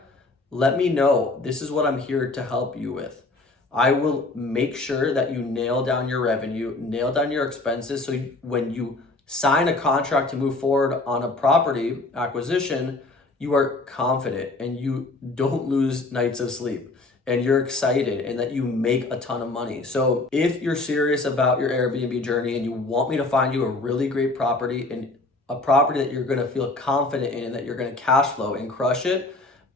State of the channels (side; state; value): right; quieter; 3.2 dB